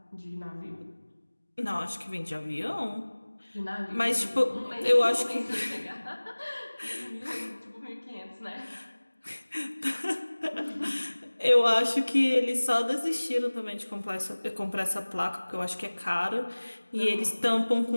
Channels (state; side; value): inverted; both; correlation -1.00